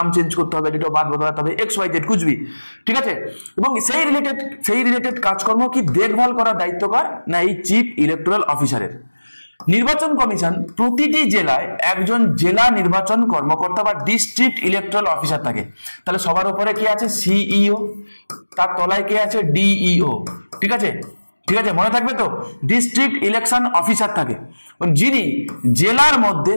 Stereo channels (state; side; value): inverted; both; correlation -1.00